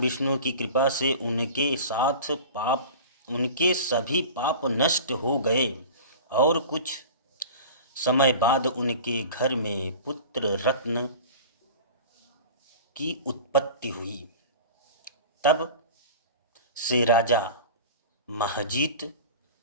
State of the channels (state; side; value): inverted; both; correlation -0.37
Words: विष्णु की कृपा से उनके सभी पाप नष्ट हो गए और कुछ समय बाद उनके घर में पुत्र रत्न की उत्पत्ति हुई। तब से राजा महजीत